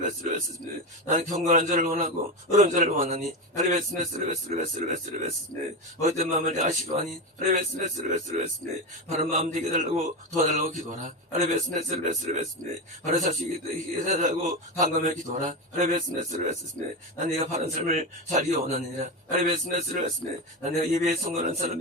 나는 경건한 자를 원하고 의로운 자를 원하니 에베스메스르베스르베스르베스르베스르 어떤 마음을 내가 싫어하니 에베스메스르베스르베스르베스르 바른 마음 되게 달라고 도와달라고 기도하라 에베스메스르베스르베스르 바른 사실이 해달라고 강감해 기도하라 에베스메스르베스르 난 네가 바른 삶을 살기 원하느니라 에베스메스르베스르 난 내가 예배에 성공하는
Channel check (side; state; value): both; normal; correlation 0.17